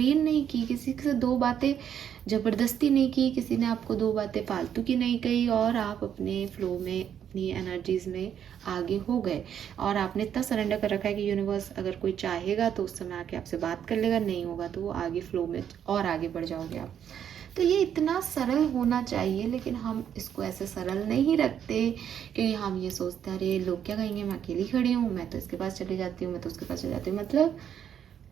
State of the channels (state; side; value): quieter; left; 9.0 dB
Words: नहीं की, किसी से दो बातें ज़बरदस्ती नहीं की, किसी ने आपको दो बातें फालतू की नहीं कही, और आप अपने फ्लो में अपनी एनर्जीज में आगे हो गए। और आपने इतना सरेंडर कर रखा है कि यूनिवर्स अगर कोई चाहेगा तो उस समय आके आपसे बात कर लेगा, नहीं होगा तो वो आगे फ्लो में और आगे बढ़ जाओगे आप। तो ये इतना सरल होना चाहिए, लेकिन हम इसको ऐसे सरल नहीं रखते, क्योंकि हम ये सोचते हैं अरे लोग क्या कहेंगे, मैं अकेली खड़ी हूँ, मैं तो इसके पास चली जाती हूँ, मैं तो उसके पास चली जाती हूँ। मतलब